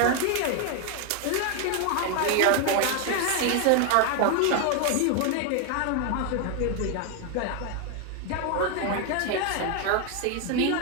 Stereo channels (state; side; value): different; both; correlation 0.01